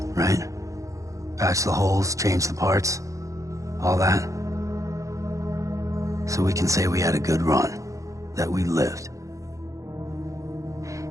right? Patch the holes, change the parts, all that. So we can say we had a good run, that we lived.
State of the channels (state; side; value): late; left; 0.15 ms